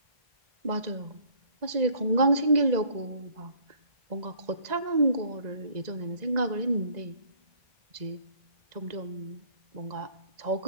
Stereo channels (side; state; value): left; late; 1.9 ms